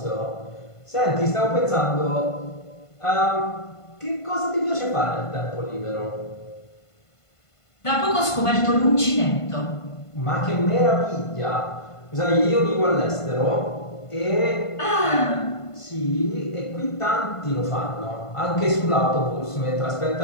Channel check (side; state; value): right; late; 1.5 ms